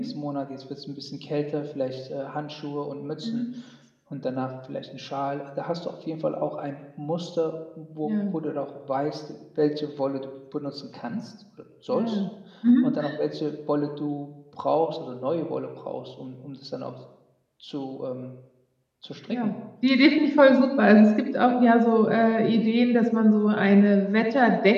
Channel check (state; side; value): identical; both; correlation 1.00